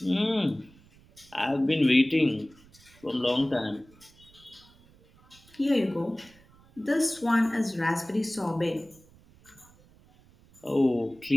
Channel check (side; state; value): right; noise; rumble, 27 dB below the sound